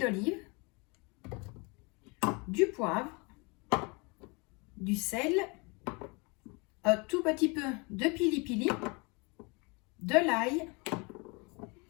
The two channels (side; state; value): right; quieter; 29.5 dB